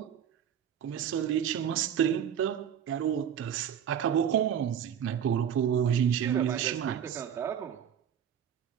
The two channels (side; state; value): left; quieter; 8.9 dB